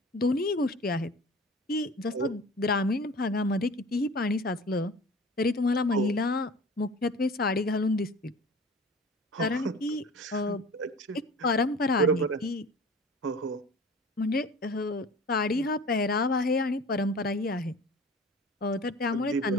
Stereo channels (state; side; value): normal; both; correlation 0.41